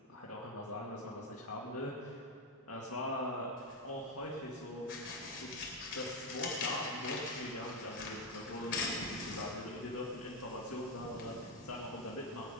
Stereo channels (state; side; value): normal; both; correlation 0.08